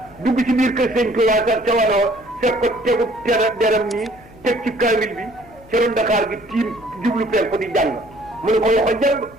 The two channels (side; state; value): left; noise; hum, 24 dB below the sound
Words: dugg ci biir kër sëñ Tuubaa sax ca wanoo fekk ko tegu deram nii teg ci kaamil bi ca ron Dakar gi tiim jublu pen ko di jàng mu ne ko loxo jàng